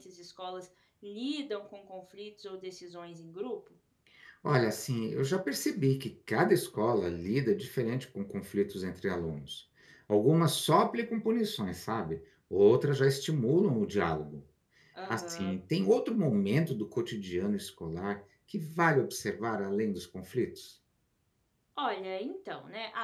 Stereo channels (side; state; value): both; identical; correlation 1.00